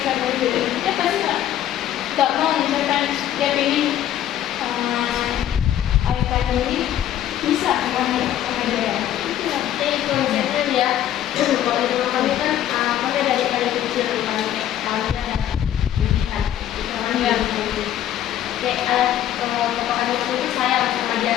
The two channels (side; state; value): right; quieter; 11.5 dB